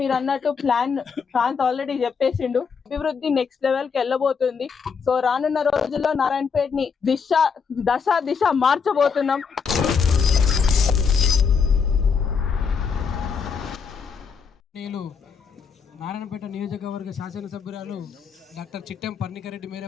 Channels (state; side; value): quieter; right; 5.9 dB